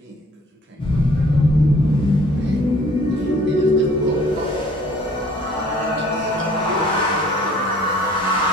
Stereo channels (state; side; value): normal; both; correlation 0.55